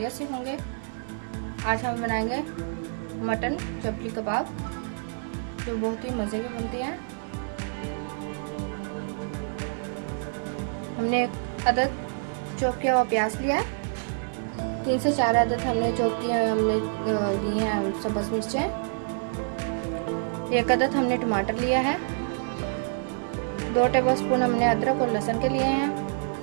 से होंगे। आज हम बनाएंगे मटन चपली कबाब, जो बहुत ही मज़े के बनते हैं। हमने एक अदद चॉप किया हुआ प्याज लिया है, 3 से 4 अदद हमने चॉप किए हमने लिए हैं सब्ज़ मिर्चें। 1 अदद हमने टमाटर लिया है। 2 टेबलस्पून हमने अदरक और लहसुन के लिए हैं।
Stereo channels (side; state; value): left; silent; digital silence